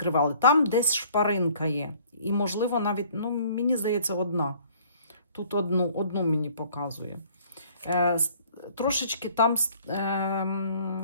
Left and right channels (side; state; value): both; inverted; correlation -0.56